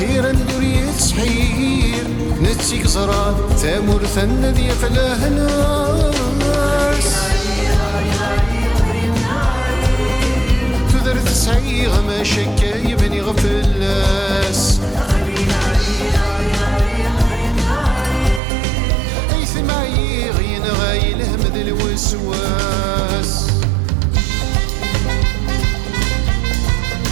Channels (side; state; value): left; drops out; at 18.4 s